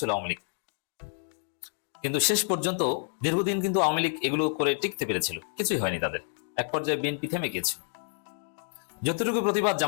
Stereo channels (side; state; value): right; silent; digital silence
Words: আওয়ামী লীগ। কিন্তু শেষ পর্যন্ত দীর্ঘদিন কিন্তু আওয়ামী লীগ এগুলো করে টিকতে পেরেছিল, কিছুই হয়নি তাদের। এক পর্যায়ে বিএনপি থেমে গিয়েছিল, যতটুকু প্রতিবাদ